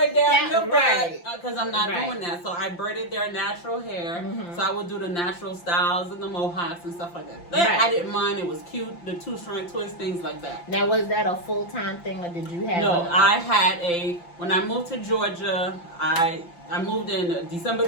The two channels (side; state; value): right; late; 5.8 ms